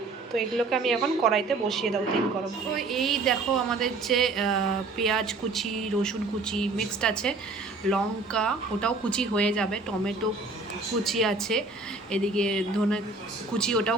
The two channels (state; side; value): quieter; left; 3.6 dB